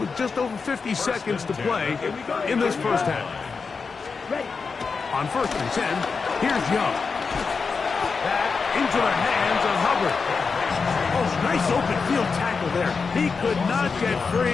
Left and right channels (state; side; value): quieter; right; 5.0 dB